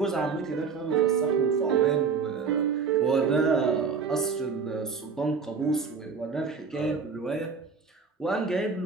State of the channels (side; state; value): left; quieter; 5.5 dB